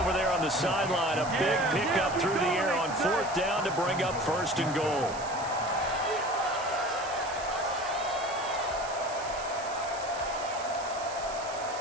there on the sideline. A big pickup through the air on 4th down to bring up 1st and goal.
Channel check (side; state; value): right; noise; hiss, 14 dB below the sound